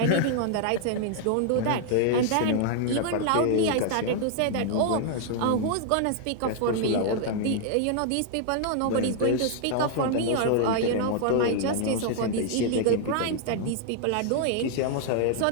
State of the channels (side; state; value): both; different; correlation 0.00